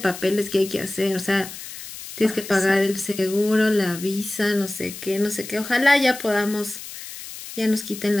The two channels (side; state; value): left; noise; hiss, 12 dB below the sound